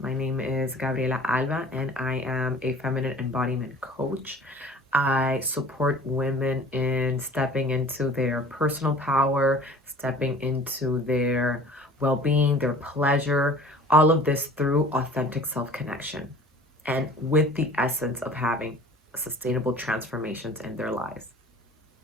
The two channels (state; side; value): normal; both; correlation 0.46